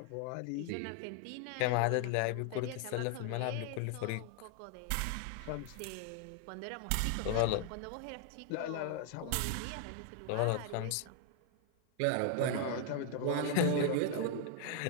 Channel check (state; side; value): different; both; correlation 0.00